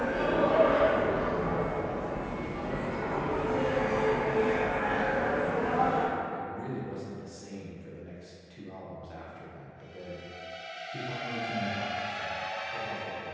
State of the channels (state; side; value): identical; both; correlation 1.00